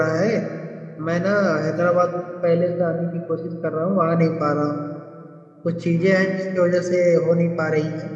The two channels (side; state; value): both; identical; correlation 1.00